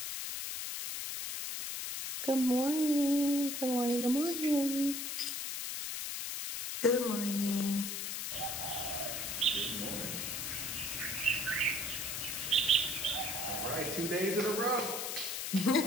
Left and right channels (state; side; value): noise; left; hiss, 3 dB below the sound